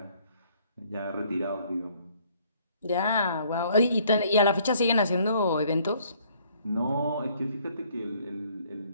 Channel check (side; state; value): both; inverted; correlation -0.62